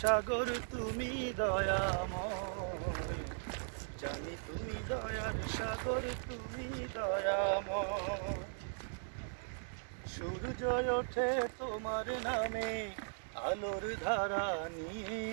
সাগর, তুমি দয়াময়। জানি তুমি দয়ার সাগর, তুমি দয়াময়। সূর্য ওঠে তোমার নামে আলোর ধারা নিয়ে,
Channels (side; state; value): left; silent; digital silence